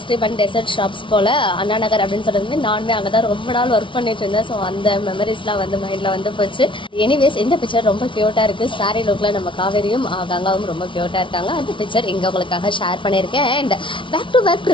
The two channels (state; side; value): late; right; 0.25 ms